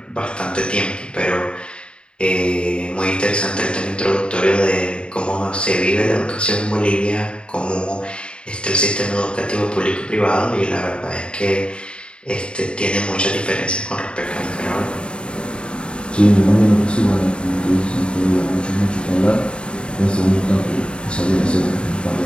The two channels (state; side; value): late; right; 0.053 ms